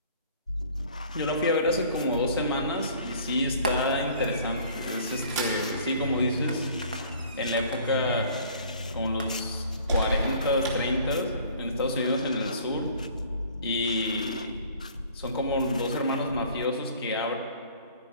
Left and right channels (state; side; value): inverted; both; correlation -0.52